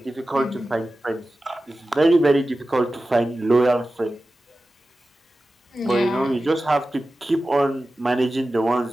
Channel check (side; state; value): both; normal; correlation 0.94